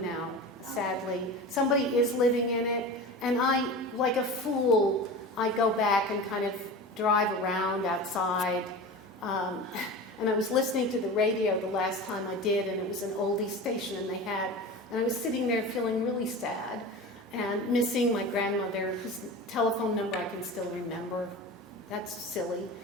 now, sadly. Somebody is living in it, and I, like a fool, I go back and kind of drive around outside. And I was listening to the radio the last time I did, and it was an oldie station, and I was sitting there feeling really sad and missing my grandmother, whose telephone number I can still remember. That's silly.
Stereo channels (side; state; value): both; normal; correlation 0.31